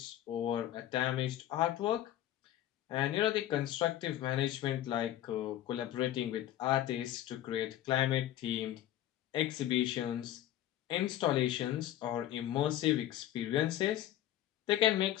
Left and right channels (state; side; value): quieter; right; 12.8 dB